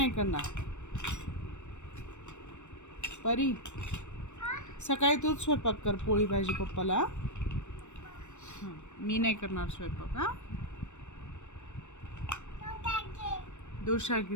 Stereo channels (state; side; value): late; right; 0.84 ms